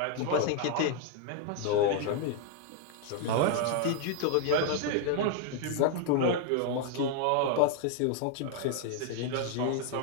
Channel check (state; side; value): different; both; correlation 0.00